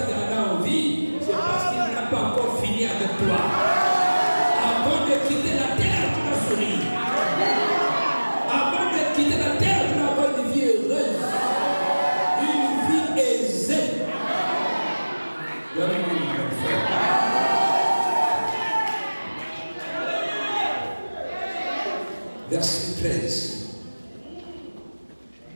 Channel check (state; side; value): inverted; both; correlation -1.00